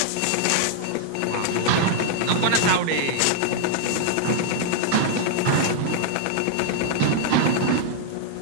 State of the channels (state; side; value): different; both; correlation -0.01